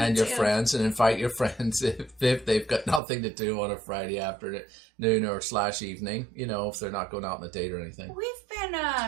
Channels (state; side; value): drops out; left; at 3.0 s